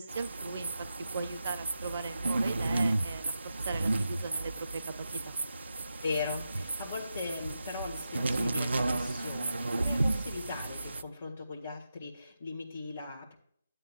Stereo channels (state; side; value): inverted; both; correlation -0.88